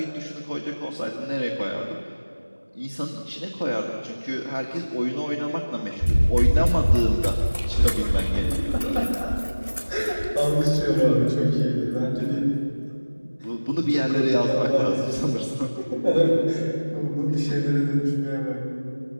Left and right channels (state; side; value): inverted; both; correlation -1.00